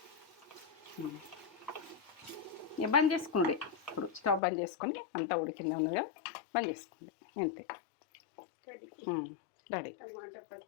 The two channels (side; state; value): right; drops out; at 4.4 s